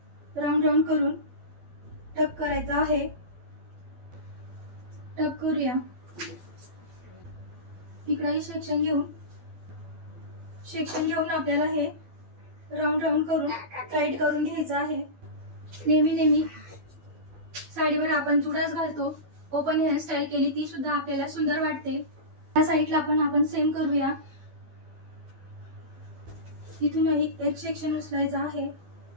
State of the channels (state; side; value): late; left; 12 ms